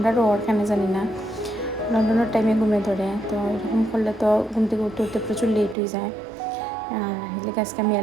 ওর কেন জানি না লন্ডনের টাইমে ঘুমে ধরে। তো এরকম করলে তো ঘুম থেকে উঠতে উঠতে প্রচুর লেট হয়ে যায়। আর এদিকে আজকে আমি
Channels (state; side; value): drops out; left; at 5.8 s